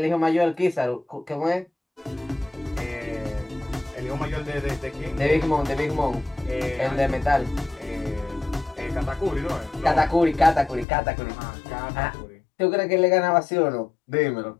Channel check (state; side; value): drops out; right; at 10.9 s